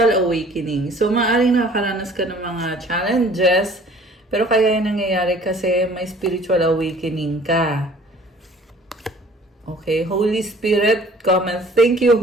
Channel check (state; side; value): normal; both; correlation 0.52